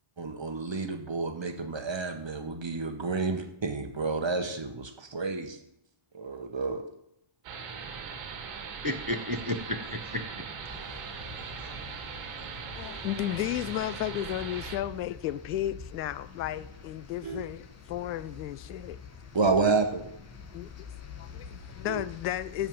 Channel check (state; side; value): late; left; 1.3 ms